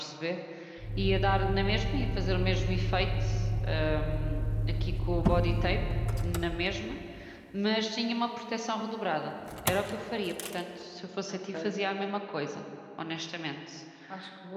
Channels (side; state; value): both; identical; correlation 1.00